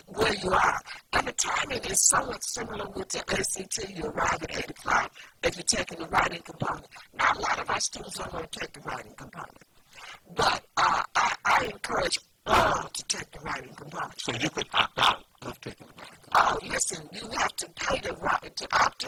where you are. And the timing is somewhat similar with the ACT. You arrive at 8 o'clock if you're taking the writing component. Now, a lot of our students don't want to take the writing component. But I encourage all to take the writing component. So you could opt out of taking the writing component. Oh, listen, you have to pay to opt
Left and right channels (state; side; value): identical; both; correlation 1.00